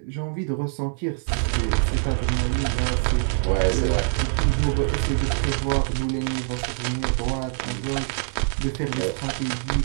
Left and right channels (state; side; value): silent; left; digital silence